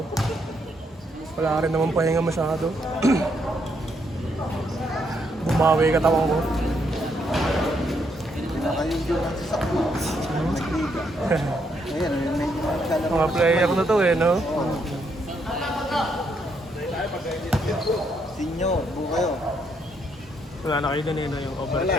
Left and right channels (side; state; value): both; normal; correlation 0.75